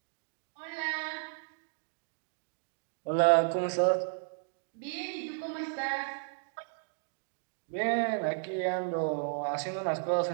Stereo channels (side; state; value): left; silent; digital silence